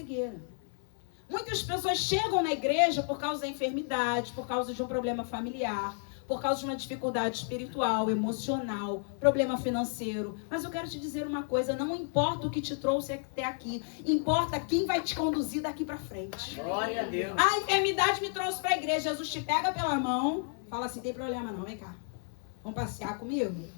Muitas pessoas chegam na igreja por causa da enfermidade, por causa de um problema familiar, por causa de uma dificuldade espiritual, emocional, problema financeiro. Mas eu quero te dizer uma coisa: não importa o que te trouxe até aqui, importa quem vai te conduzir daqui para frente. Glória a Deus. A enfermidade me trouxe para a igreja. Jesus te pega pela mão, fala assim: tem problema não, vem cá. Vamos passear comigo?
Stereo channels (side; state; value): right; silent; 56 dB below the other